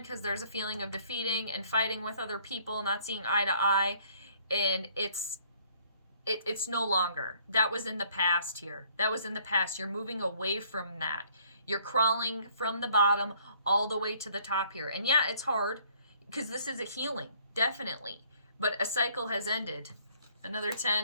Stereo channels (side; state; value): both; inverted; correlation -0.61